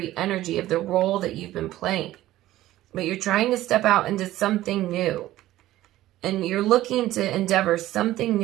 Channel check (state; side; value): quieter; left; 15.1 dB